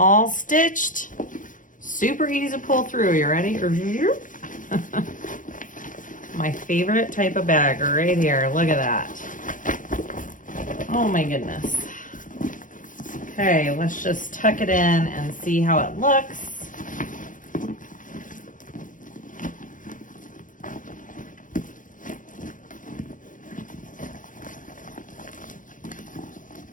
stitched. Super easy to pull through. You ready? My favorite type of bag right here. Look at that. Oh my goodness. Okay, let's just tuck it in and see how it looks.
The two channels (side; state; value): right; late; 0.38 ms